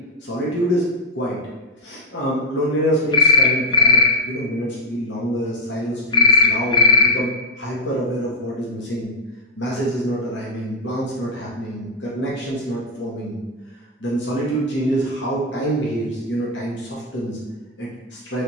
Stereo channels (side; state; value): both; normal; correlation -0.03